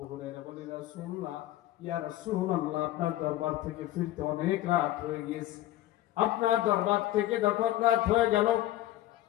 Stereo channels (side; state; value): right; quieter; 14.5 dB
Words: হুরায়রা বললেন, রাসূলুল্লাহ, ইয়া রাসূলুল্লাহ, আপনার দরবার থেকে ফিরতে অনেক রাত হয়ে গিয়েছে। আপনার দরবার থেকে যখন রাত হয়ে গেল,